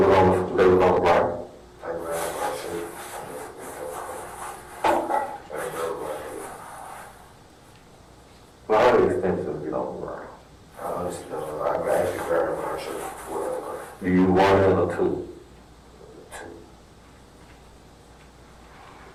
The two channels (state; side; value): identical; both; correlation 1.00